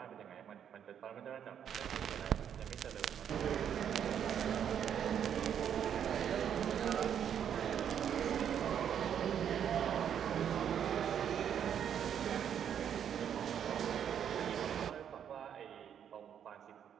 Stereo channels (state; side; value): quieter; left; 8.8 dB